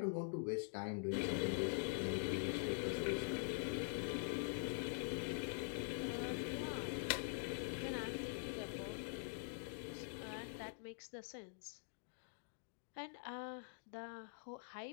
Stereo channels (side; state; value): right; silent; digital silence